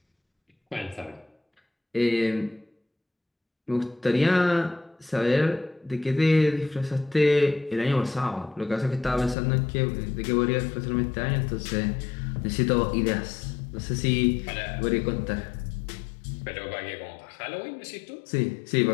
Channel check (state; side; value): drops out; right; at 9.3 s